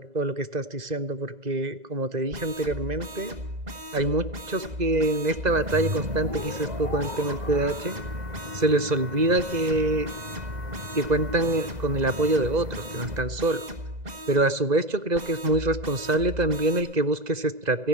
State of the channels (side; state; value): left; late; 2.0 ms